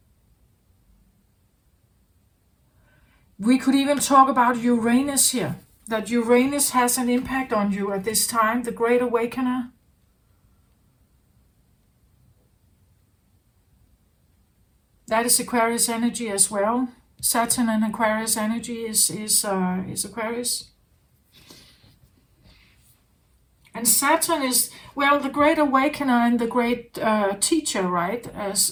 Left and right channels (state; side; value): identical; both; correlation 1.00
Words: We could even talk about Uranus here, that Uranus has an impact on you at this time, the Great Awakener. That is Aquarius energy as well. Saturn and Aquarius energy is Aquarius. And Saturn is, well, the Great Awakener and the Great Teacher, right?